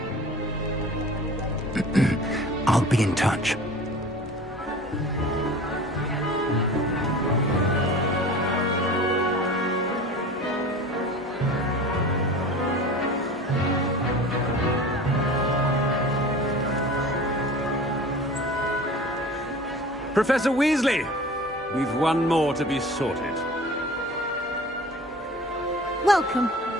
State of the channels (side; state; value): both; normal; correlation 0.40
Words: I'll be in touch. Professor Weasley, we've one more to be sorted. Welcome.